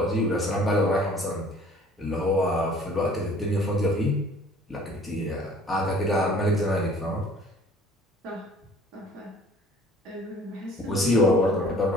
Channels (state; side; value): normal; both; correlation 0.52